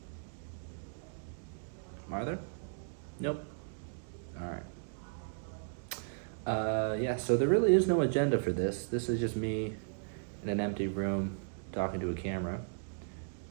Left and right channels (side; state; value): left; silent; digital silence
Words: Are there? Nope. Alright. Yeah, so there really is no agenda for this. This is just me in an empty room talking to a camera.